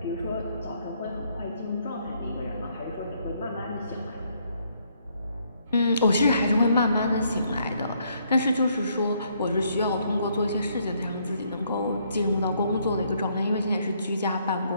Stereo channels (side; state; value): both; inverted; correlation -0.70